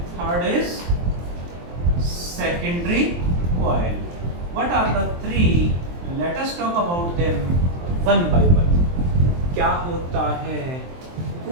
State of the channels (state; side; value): late; left; 23 ms